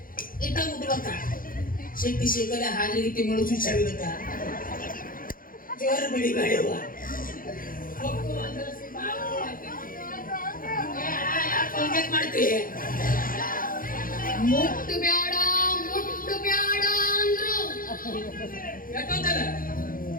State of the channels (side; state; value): right; late; 0.41 ms